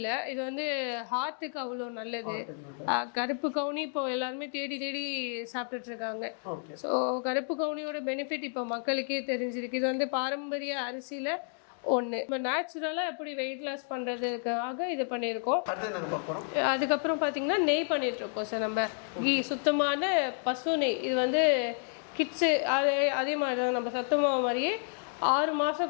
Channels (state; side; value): silent; right; 57 dB below the other